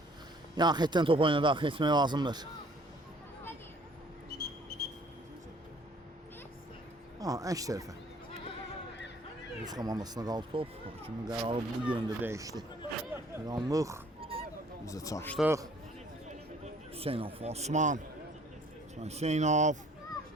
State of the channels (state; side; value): normal; both; correlation 0.56